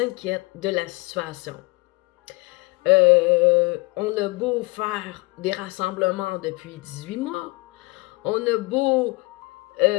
inquiète de la situation. On a beau faire des rassemblements depuis 18 mois, on a beau...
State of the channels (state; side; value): quieter; right; 25.0 dB